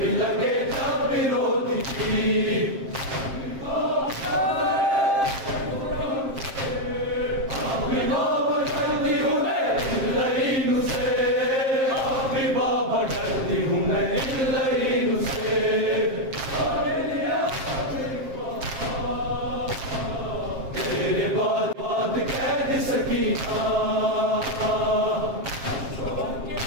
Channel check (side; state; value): left; late; 7.6 ms